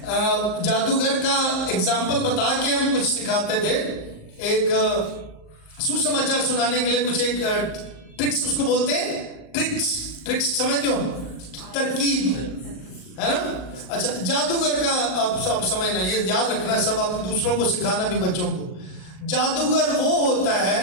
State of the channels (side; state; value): right; late; 38 ms